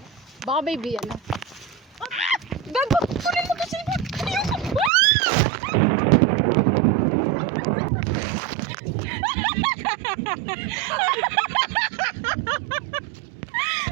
Baka baby, ano? Gago! Kunin mo kasi mo!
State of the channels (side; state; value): left; drops out; at 4.9 s